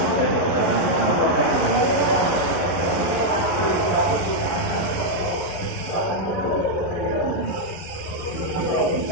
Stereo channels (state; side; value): late; right; 11 ms